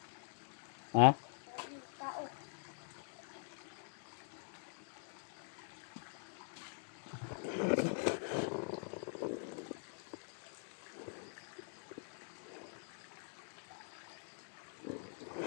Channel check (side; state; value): right; silent; digital silence